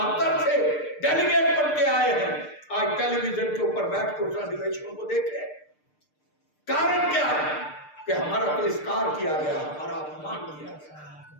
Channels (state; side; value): late; right; 6.6 ms